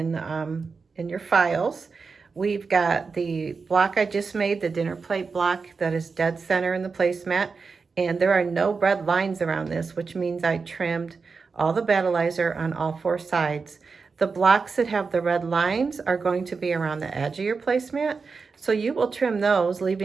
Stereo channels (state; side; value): quieter; left; 4.8 dB